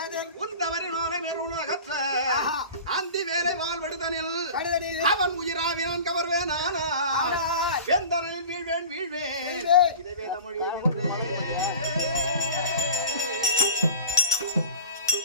ஏதன் உந்தவரி நாளை மேற்குணகற்ற ஆஹா. அந்தி வேலை வாழ்வடுதனில் கடுதலில் அவன் உயிராவி நான் கவர்வேனானால் ஆனால் வெந்தரனில் வீழ்வேன் வீழ்வேன் வீழ்வேன். இதை வேத மொழி என்றே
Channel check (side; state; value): both; inverted; correlation -0.36